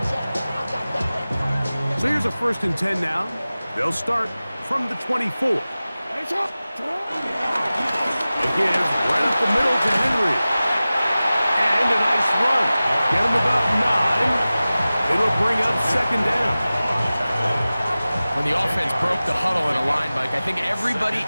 So here's a 1st and 10 now. They'll start from the 24. A give right up the middle to Henry. And a nice run. Get him about 9. It'll bring up 2nd down. When the offense broke the huddle in a line, Mike, I think everybody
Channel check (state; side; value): inverted; both; correlation -0.97